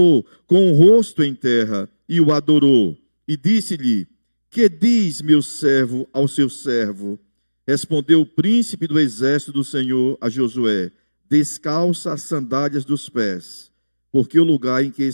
com o rosto em terra e o adorou, e disse-lhe: que diz meu servo ao seu servo? Respondeu o príncipe do exército do Senhor a Josué: descalça as sandálias dos pés, porque o lugar em que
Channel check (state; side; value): inverted; both; correlation -1.00